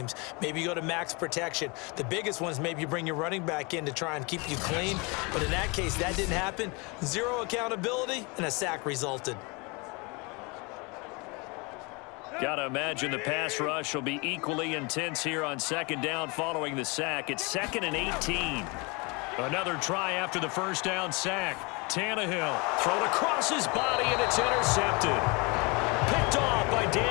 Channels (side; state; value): right; quieter; 28.8 dB